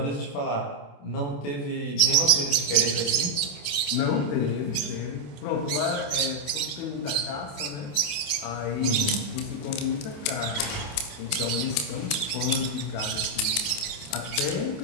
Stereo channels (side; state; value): right; late; 28 ms